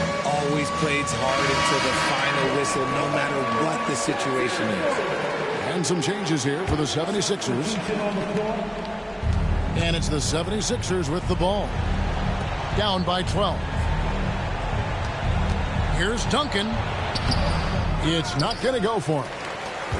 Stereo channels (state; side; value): identical; both; correlation 1.00